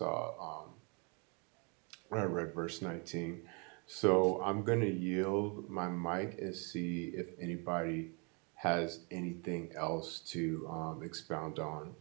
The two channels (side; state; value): left; quieter; 33.9 dB